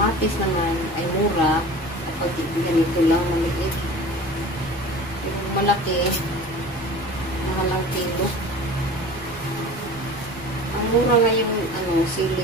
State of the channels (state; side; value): noise; right; rumble, 20 dB below the sound